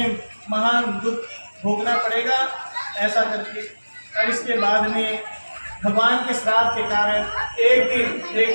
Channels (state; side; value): inverted; both; correlation -1.00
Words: महान दुख भोगना पड़ेगा, ऐसा करके। और इसके बाद में भगवान के श्राप के कारण एक दिन